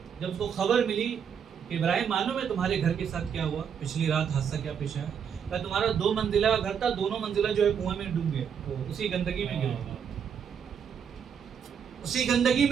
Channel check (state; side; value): quieter; left; 7.5 dB